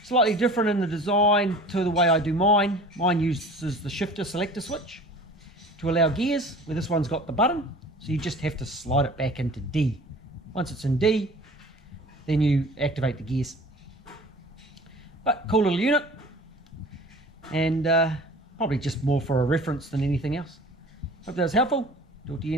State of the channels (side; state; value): both; normal; correlation 0.43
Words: Slightly different in the design to the way I do mine. Mine uses the shifter selector switch to allow gears, where this one's got the button. So you just have to slide it back into D. Once it's in D, then you activate the gears. But cool little unit, and probably just more for a reference than anything else. Hope that was helpful. Talk to you